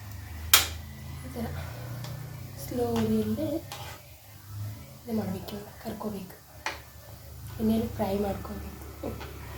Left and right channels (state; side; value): identical; both; correlation 1.00